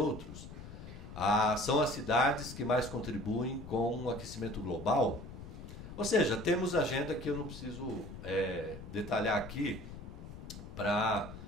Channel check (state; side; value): noise; left; rumble, 12 dB below the sound